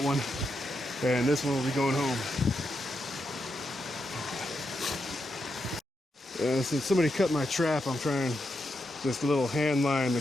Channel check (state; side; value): normal; both; correlation 0.84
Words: one, and this one will be going home. Since somebody cut my trap, I'm trying this little Handline